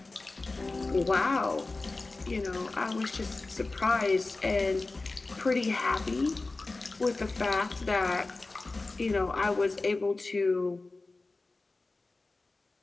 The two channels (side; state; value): right; quieter; 3.4 dB